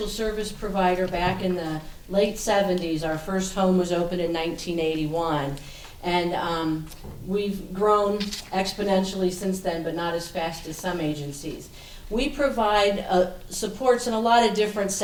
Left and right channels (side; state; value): both; identical; correlation 1.00